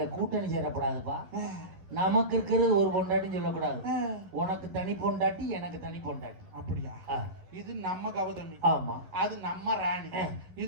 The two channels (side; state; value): left; late; 11 ms